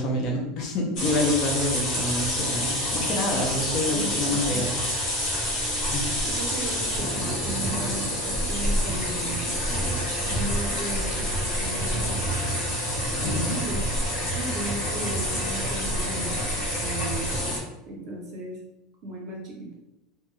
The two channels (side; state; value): both; normal; correlation 0.31